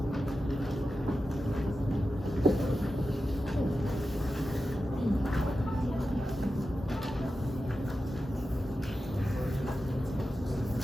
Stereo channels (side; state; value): both; normal; correlation 0.92